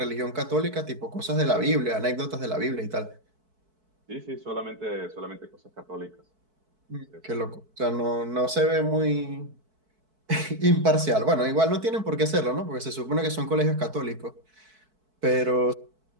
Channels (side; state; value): left; late; 4.6 ms